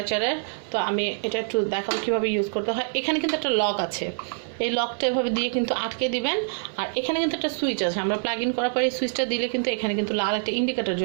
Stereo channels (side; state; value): left; silent; 55 dB below the other